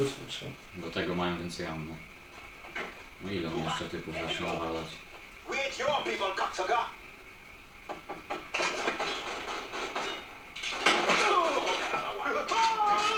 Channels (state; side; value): identical; both; correlation 1.00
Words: Do tego mają więcej ammo. No ile on jeszcze typów zacznie nawalać? We ain't your people, cocksucker.